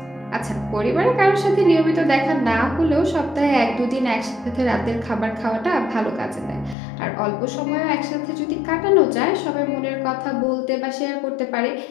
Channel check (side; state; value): right; drops out; at 6.8 s